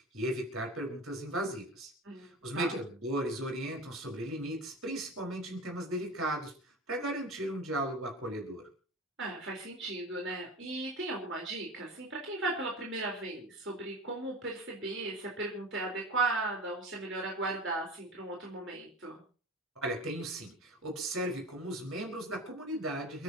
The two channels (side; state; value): both; normal; correlation 0.33